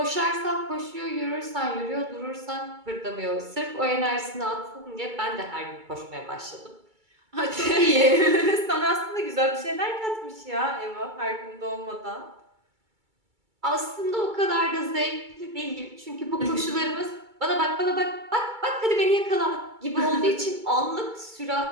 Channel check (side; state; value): left; late; 2.3 ms